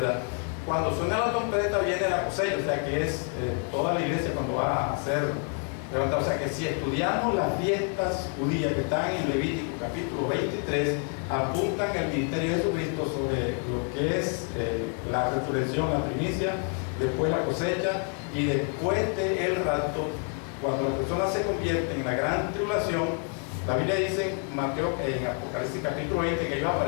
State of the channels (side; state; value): right; quieter; 38.5 dB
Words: Cuando suena la trompeta viene la cosecha, o sea que es toda la iglesia cuando va a hacer O sea que si estudiamos las fiestas judías que están en Levítico capítulo 23, apuntan el ministerio de Jesucristo sobre lo que es la resurrección, la primicia, después la cosecha y después del rapto, cuando las personas se convierten en la gran tribulación. La Biblia dice en Apocalipsis capítulo 20 que ellos